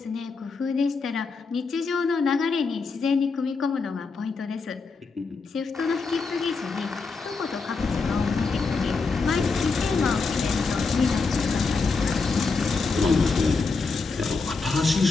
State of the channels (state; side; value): quieter; right; 4.4 dB